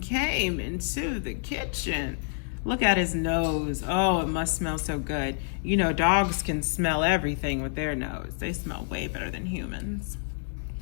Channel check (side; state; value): right; silent; digital silence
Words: came into the kitchen. Look at his nose. Oh, it must smell so good. You know, dogs can smell everything with their nose. They smell way better than humans.